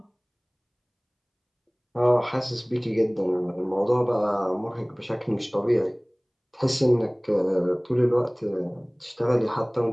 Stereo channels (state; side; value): identical; both; correlation 1.00